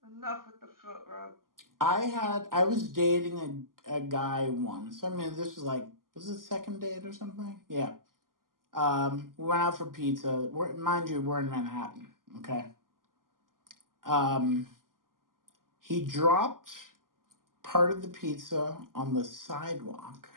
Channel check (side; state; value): left; late; 0.91 ms